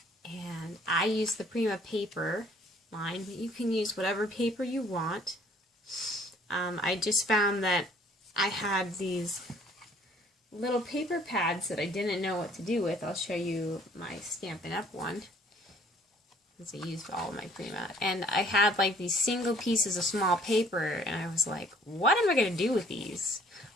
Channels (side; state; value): both; normal; correlation 0.59